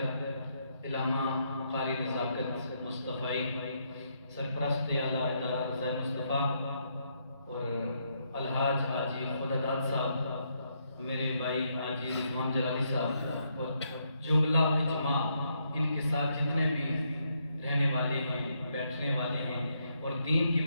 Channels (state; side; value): inverted; both; correlation -0.77